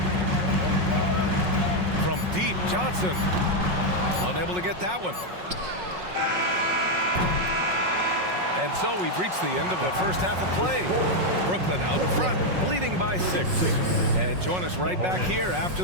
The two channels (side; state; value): left; late; 5.5 ms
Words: From deep, Johnson. Unable to get that one. And so we've reached the end of the first half of play. Brooklyn out in front, leading by 6. And join us right back here